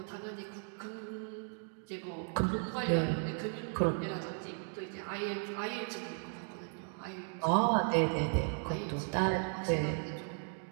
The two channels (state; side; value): silent; left; 54 dB below the other